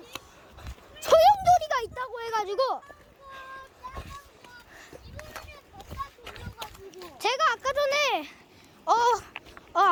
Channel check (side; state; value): both; identical; correlation 1.00